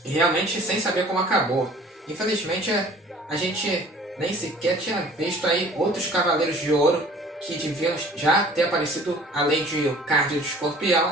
E realmente sem saber como acabou. Infelizmente a gente nem sequer tinha visto aí outros Cavaleiros de Ouro que deviam já ter aparecido, além de o Card do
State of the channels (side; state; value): both; normal; correlation 0.50